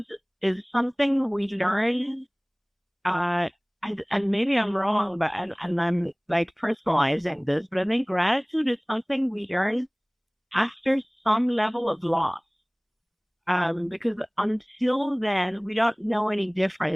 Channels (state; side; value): identical; both; correlation 1.00